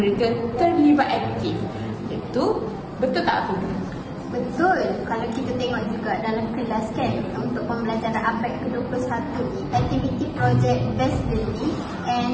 terlibat aktif. Itu betul tak, Afiqah? Betul. Kalau kita tengok juga dalam kelas kan, untuk pembelajaran abad ke-21 ni, aktiviti projek based learning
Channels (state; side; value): identical; both; correlation 1.00